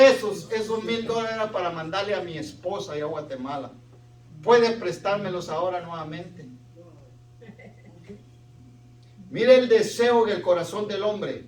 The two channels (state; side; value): identical; both; correlation 1.00